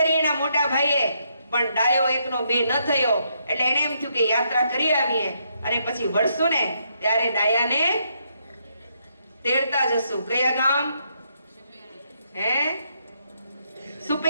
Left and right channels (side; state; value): both; inverted; correlation -0.76